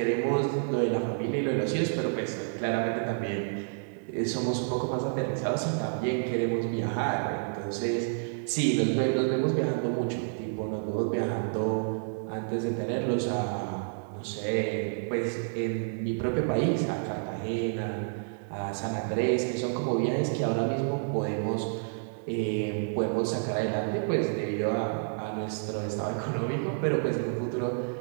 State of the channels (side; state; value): left; silent; 58 dB below the other